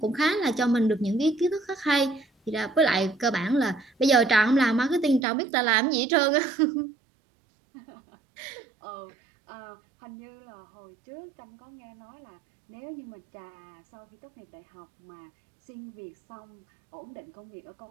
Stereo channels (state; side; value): drops out; left; at 5.2 s